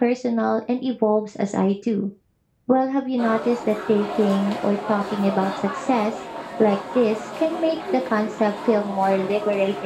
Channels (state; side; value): identical; both; correlation 1.00